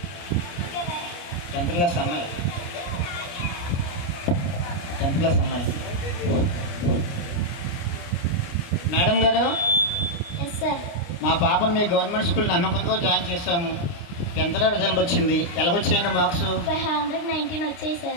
10th క్లాస్ అమ్మాయి. మేడం గారు ఎస్ సార్. మా పాపను మీ గవర్నమెంట్ స్కూల్ నమ్మకంతో జాయిన్ చేస్తాము. 10th రిజల్ట్ వచ్చింది. ఎలాగొచ్చాయండి మార్క్స్? 519 వచ్చాయి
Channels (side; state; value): right; late; 29 ms